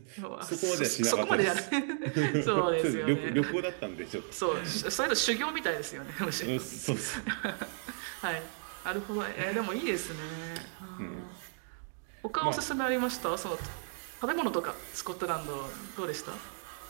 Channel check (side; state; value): left; silent; 55 dB below the other